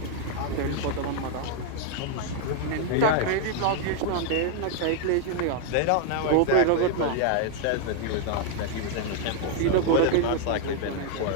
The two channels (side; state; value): both; different; correlation 0.00